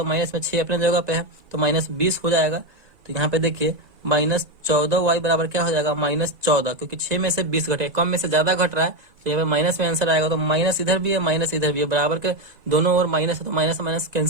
माइनस में 6 अपने जगह पे है तो माइनस 20 हो जाएगा। तो यहाँ पे देखिए माइनस 14 y बराबर क्या हो जाएगा, माइनस 14, क्योंकि 6 में से 20 घटे, कम में से ज्यादा घट रहा है, तो यहाँ पे माइनस में आंसर आएगा। तो माइनस इधर भी है, माइनस इधर भी है, बराबर के दोनों ओर माइनस है, तो माइनस माइनस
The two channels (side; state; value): left; late; 1.9 ms